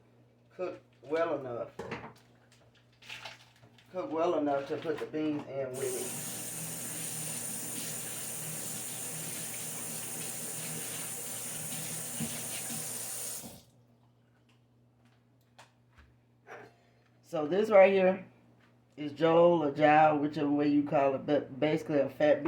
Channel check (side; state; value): both; identical; correlation 1.00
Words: cooked well enough. Cooked well enough to put the beans in with it. So this right here is Jowl or Jowl, whichever way you call it, but basically a fat